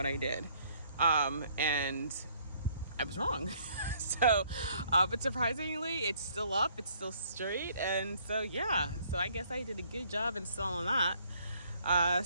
I did, and I was wrong. So, but surprisingly, it's still up, it's still straight, and so yeah. So I guess I did a good job installing that.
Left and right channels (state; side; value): inverted; both; correlation -0.63